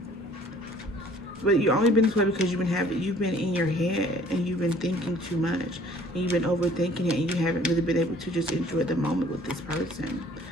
But you've only been this way because you've been in your head and you've been thinking too much and you've been overthinking it and you haven't really been able to just enjoy the moment with this person.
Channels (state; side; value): normal; both; correlation 0.54